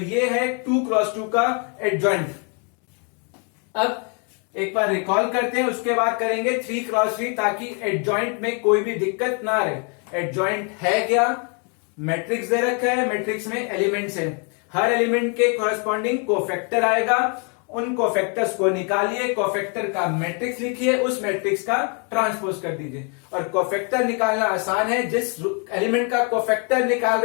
है 2x2 का एडजॉइंट। अब एक बार रिकॉल करते हैं, उसके बाद करेंगे 3x3 ताकि एडजॉइंट में कोई भी दिक्कत ना रहे। एडजॉइंट है क्या, मैट्रिक्स दे रखा है, मैट्रिक्स में एलिमेंट्स है, हर एलिमेंट के कॉरेस्पॉन्डिंग कोफैक्टर आएगा, उन कोफैक्टर्स को निकालिए, कोफैक्टर का मैट्रिक्स लिखिए, उस मैट्रिक्स का ट्रांसपोज कर दीजिए। और कोफैक्टर निकालना आसान है, जिस एलिमेंट का कोफैक्टर निकाल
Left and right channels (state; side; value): quieter; right; 37.9 dB